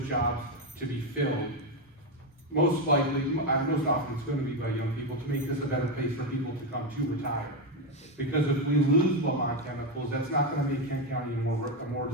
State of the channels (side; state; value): both; normal; correlation 0.08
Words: jobs to be filled. Most often it's going to be by young people to make this a better place for people to come to retire. Because if we lose Lamont Chemicals, that's not going to make Kent County a more